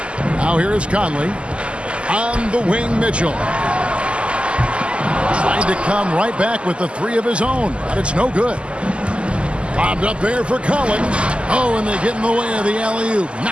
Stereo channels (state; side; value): late; left; 0.054 ms